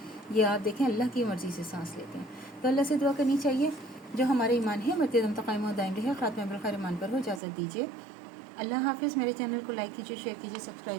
ये आप देखें अल्लाह की मर्ज़ी से सांस लेते हैं। तो अल्लाह से दुआ करनी चाहिए जो हमारे ईमान है मरते दम तक कायम दायम रहे, ख़ात्मा बिल खैर ईमान पर हो। इजाज़त दीजिए। अल्लाह हाफ़िज़। मेरे चैनल को लाइक कीजिए, शेयर कीजिए,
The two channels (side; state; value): left; drops out; at 7.4 s